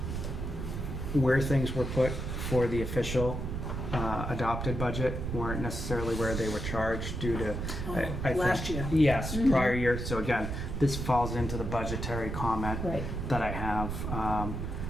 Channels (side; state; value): right; noise; rumble, 4 dB below the sound